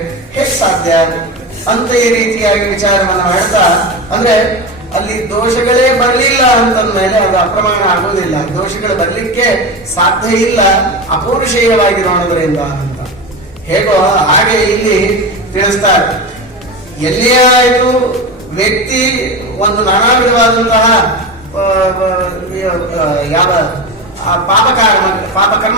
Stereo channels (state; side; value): normal; both; correlation 0.22